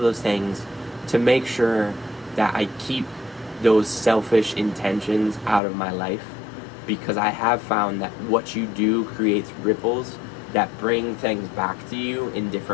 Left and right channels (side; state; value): right; drops out; at 5.6 s